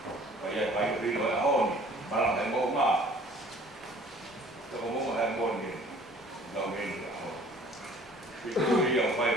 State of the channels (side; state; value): both; normal; correlation 0.52